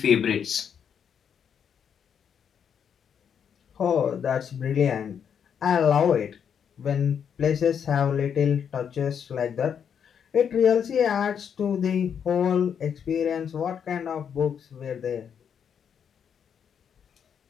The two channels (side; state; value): right; quieter; 7.8 dB